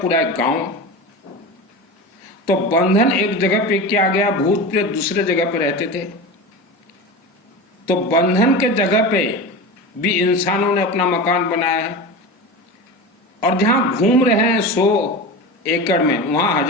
पूरा एक गांव। तो बंधन एक जगह पे किया गया, भूत प्रेत दूसरे जगह पे रहते थे। तो बंधन के जगह पे भी इंसानों ने अपना मकान बनाया है, और जहां घूम रहे हैं 100 एकड़ में, वहां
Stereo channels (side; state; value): both; normal; correlation 0.27